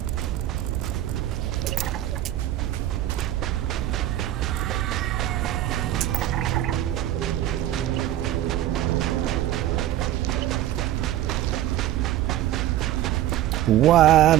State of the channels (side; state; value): left; quieter; 13.2 dB